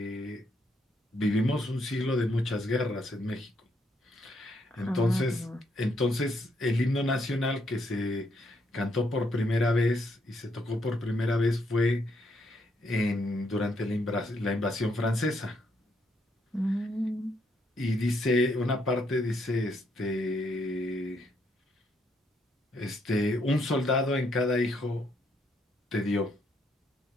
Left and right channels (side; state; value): both; normal; correlation 0.74